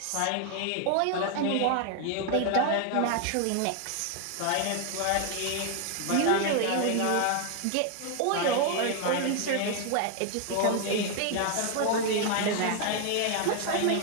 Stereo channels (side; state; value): both; different; correlation 0.00